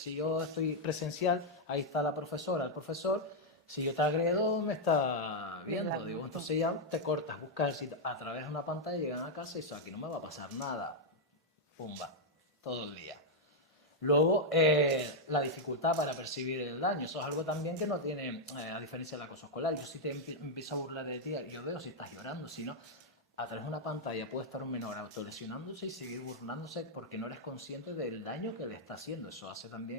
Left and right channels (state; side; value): normal; both; correlation -0.02